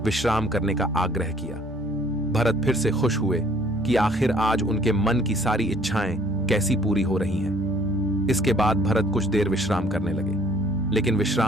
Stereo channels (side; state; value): both; normal; correlation 0.58